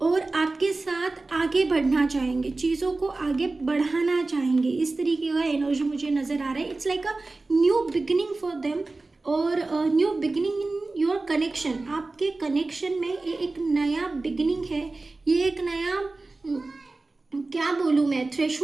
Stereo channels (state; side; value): quieter; left; 3.4 dB